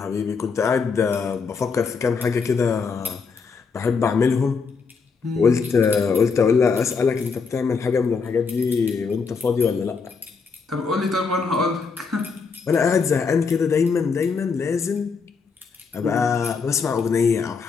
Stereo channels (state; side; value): quieter; right; 5.2 dB